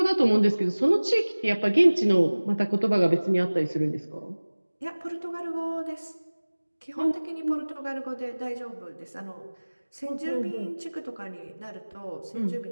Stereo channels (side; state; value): both; inverted; correlation -1.00